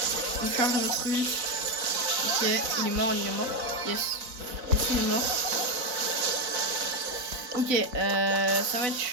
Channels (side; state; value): left; late; 4.0 ms